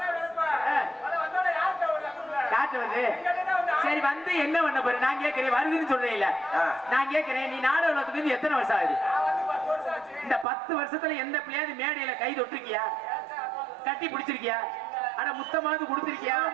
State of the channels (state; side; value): drops out; left; at 10.5 s